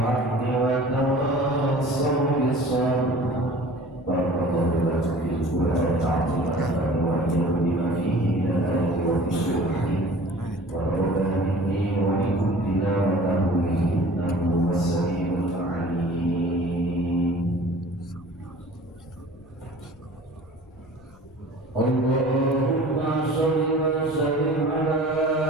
wa tawassaw bis sabr. Barakallahu lakum fil Qur'an al-'azim wa bima fihi min al-ayati wa dhikri wa rabbana inni wa minkum tilawatahu innahu was-sami'ul 'alim. Allahumma shalli wa sallim ala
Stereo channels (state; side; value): noise; left; rumble, 26 dB below the sound